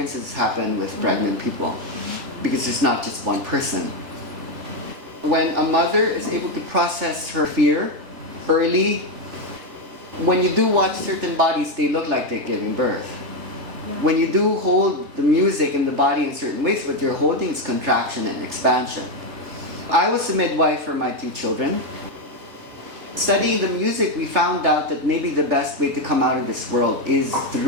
happen with pregnant people because there's not just one person. When a mother is able to process her fear early, when you do watch certain bodies, they look like they're giving birth. When you do hold the music in the body in certain ways, what you're holding is contraction and expansion. I was a midwife for my 2 children. Studying the music, we found out that maybe the best way to come out of this world is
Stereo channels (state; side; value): late; left; 3.3 ms